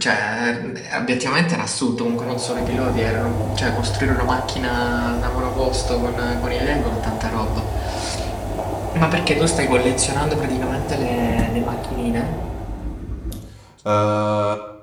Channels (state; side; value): identical; both; correlation 1.00